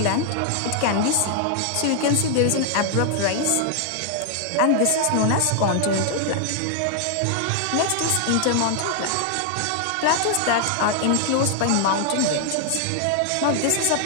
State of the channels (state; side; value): different; both; correlation 0.00